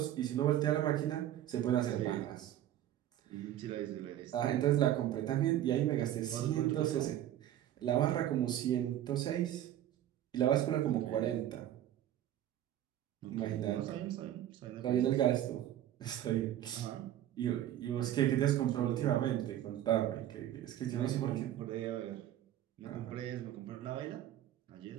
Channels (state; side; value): quieter; left; 12.2 dB